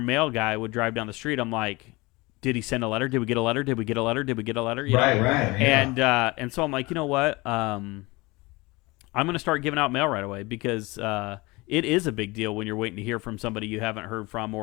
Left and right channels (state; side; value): quieter; right; 23.4 dB